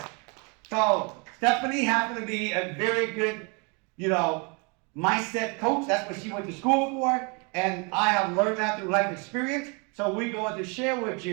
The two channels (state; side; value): quieter; left; 32.4 dB